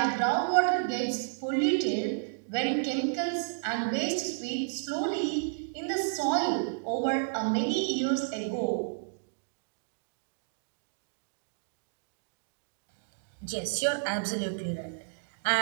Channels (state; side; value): silent; left; digital silence